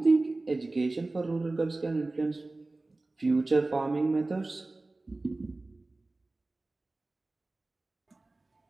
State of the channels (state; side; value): quieter; left; 3.1 dB